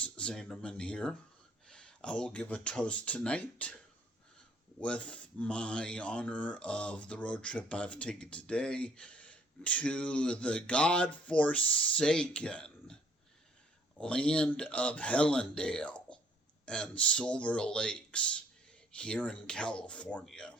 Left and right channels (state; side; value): normal; both; correlation 0.61